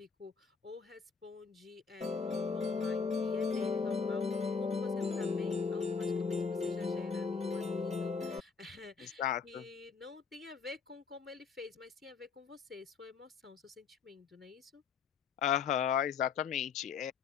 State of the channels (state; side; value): quieter; right; 5.6 dB